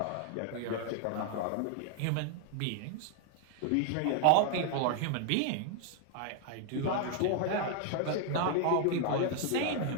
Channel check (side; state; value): both; different; correlation 0.00